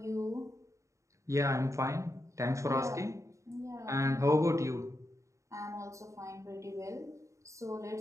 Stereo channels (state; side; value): late; left; 0.15 ms